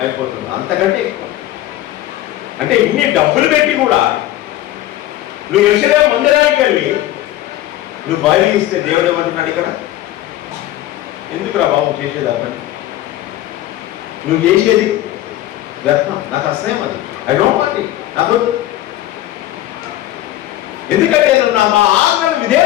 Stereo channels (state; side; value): quieter; right; 14.4 dB